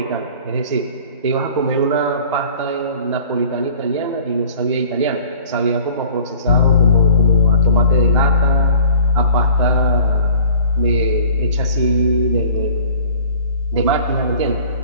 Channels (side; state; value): both; inverted; correlation -0.49